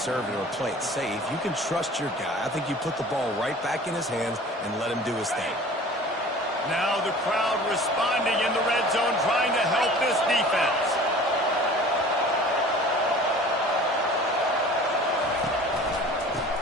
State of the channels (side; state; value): both; normal; correlation 0.44